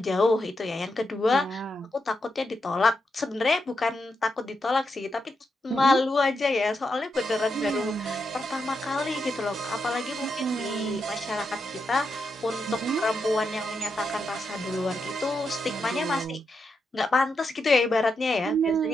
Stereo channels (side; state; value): both; normal; correlation 0.84